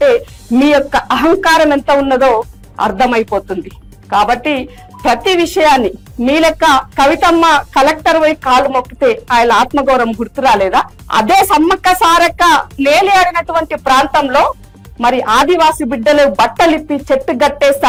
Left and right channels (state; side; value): identical; both; correlation 1.00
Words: మీ యొక్క అహంకారం ఎంత ఉన్నదో అర్థమైపోతుంది. కాబట్టి ప్రతి విషయాన్ని మీ లెక్క కవితమ్మ కలెక్టర్ పోయి కాళ్ళు మొక్కితే ఆయన ఆత్మగౌరవం గుర్తు రాలేదా? అదే సమ్మక్క సారక్క లేలియాడినటువంటి ప్రాంతంలో మరి ఆదివాసి బిడ్డలు బట్టలిప్పి చెట్టు గట్టేస్తే